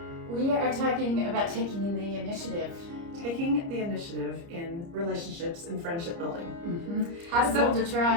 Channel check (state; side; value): late; left; 30 ms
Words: We are talking about taking the initiative. Taking the initiative in relationships and friendship building. How to build a